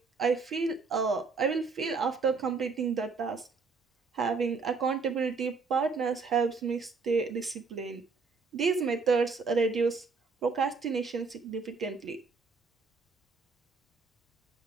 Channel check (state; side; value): quieter; left; 4.6 dB